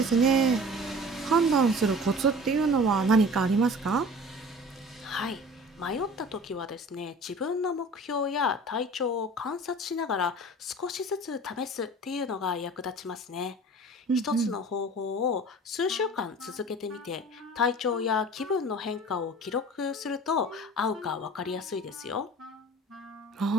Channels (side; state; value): both; normal; correlation 0.42